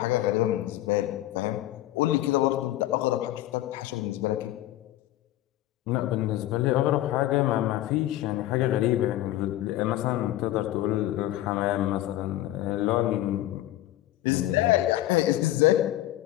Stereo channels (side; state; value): right; quieter; 14.8 dB